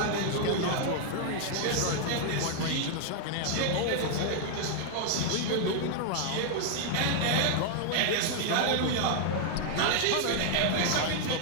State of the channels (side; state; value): both; different; correlation 0.00